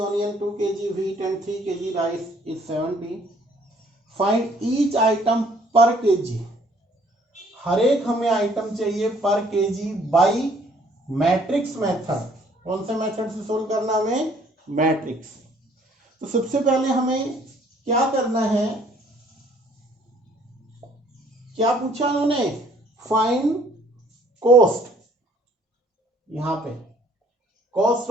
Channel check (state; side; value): normal; both; correlation 0.60